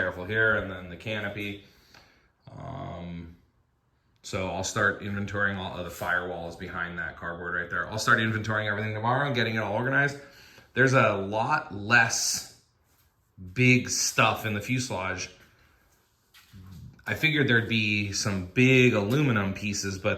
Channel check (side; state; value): both; identical; correlation 1.00